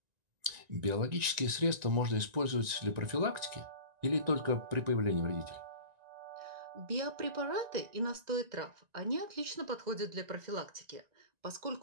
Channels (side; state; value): left; late; 1.9 ms